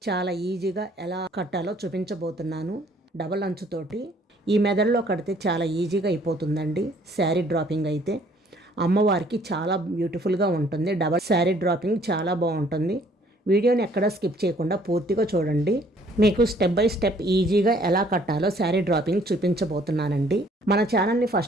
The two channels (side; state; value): both; normal; correlation 0.60